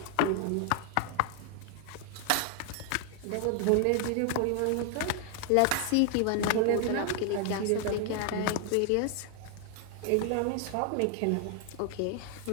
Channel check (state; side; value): different; both; correlation 0.01